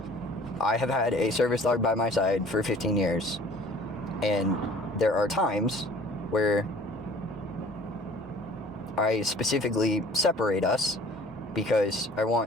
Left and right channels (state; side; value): normal; both; correlation 0.49